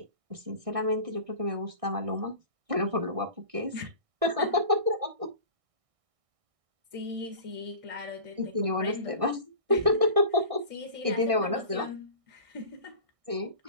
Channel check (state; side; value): late; left; 1.6 ms